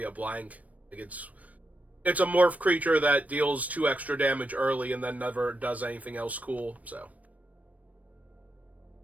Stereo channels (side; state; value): left; late; 0.070 ms